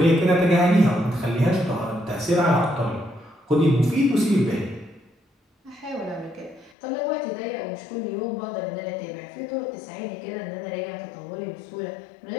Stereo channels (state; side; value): drops out; right; at 6.7 s